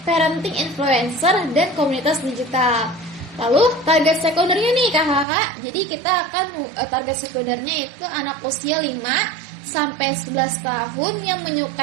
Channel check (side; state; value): left; drops out; at 5.2 s